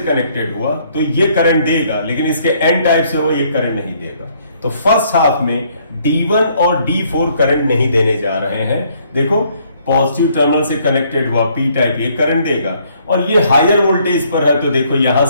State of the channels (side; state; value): both; inverted; correlation -0.66